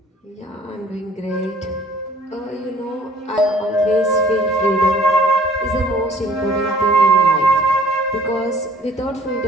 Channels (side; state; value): both; normal; correlation 0.54